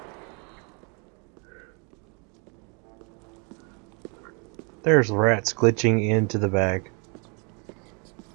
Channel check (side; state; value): left; quieter; 34.7 dB